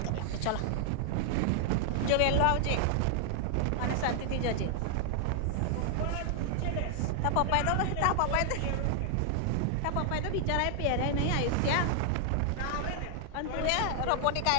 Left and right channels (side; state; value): both; different; correlation 0.00